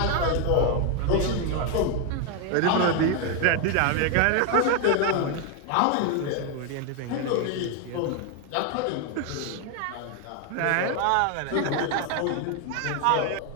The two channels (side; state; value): both; different; correlation 0.00